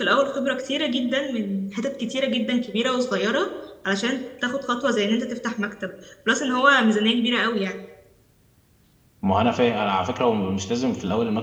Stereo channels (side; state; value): both; identical; correlation 1.00